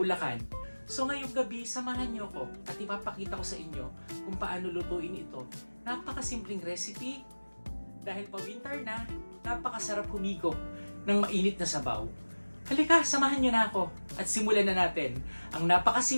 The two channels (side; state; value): both; inverted; correlation -1.00